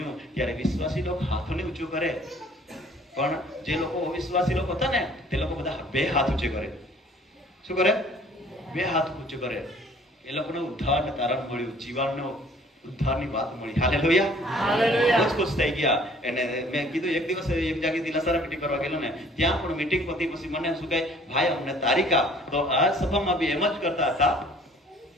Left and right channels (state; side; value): normal; both; correlation 0.55